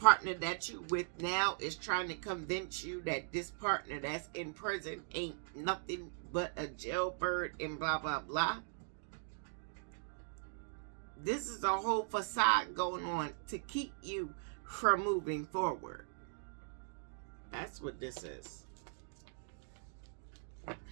that you with now is trying to convince you that this partner that's in prison ain't nothing but a jailbird and blah, blah, blah. This is a whole facade going on to keep you from moving forward. That's what this is.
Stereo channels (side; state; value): left; silent; digital silence